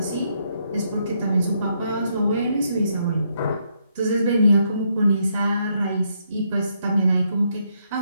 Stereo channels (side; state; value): both; inverted; correlation -0.75